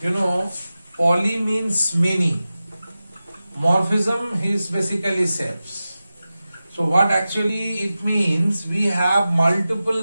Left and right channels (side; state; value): both; inverted; correlation -0.94